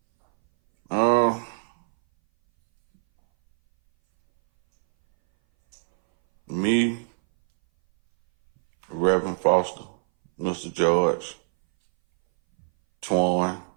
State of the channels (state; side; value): silent; left; 60 dB below the other